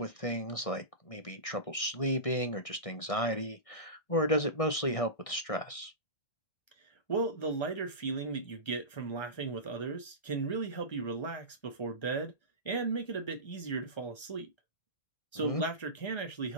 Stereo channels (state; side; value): late; right; 1.6 ms